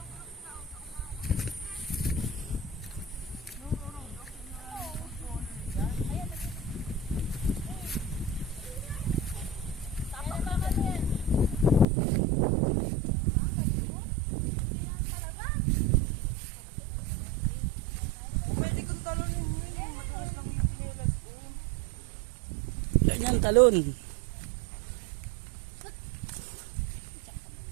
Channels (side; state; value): left; drops out; at 11.9 s